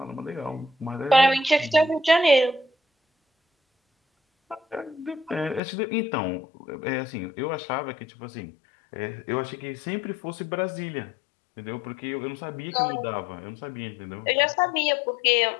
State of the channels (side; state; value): right; drops out; at 5.6 s